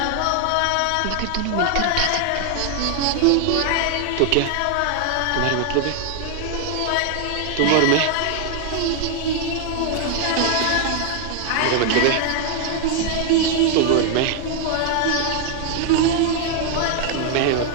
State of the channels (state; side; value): different; both; correlation 0.00